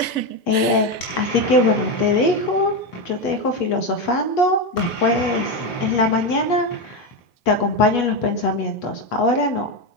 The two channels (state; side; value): late; right; 3.4 ms